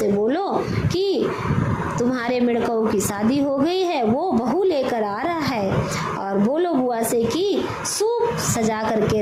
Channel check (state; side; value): identical; both; correlation 1.00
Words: बोलो कि तुम्हारे मेढकों की शादी हो गई है, वो बहू लेकर आ रहा है, और बोलो बुआ से कि सूप सजा करके